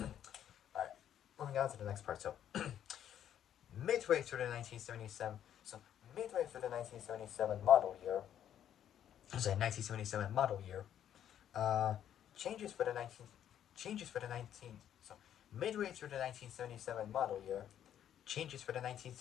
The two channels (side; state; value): right; quieter; 10.2 dB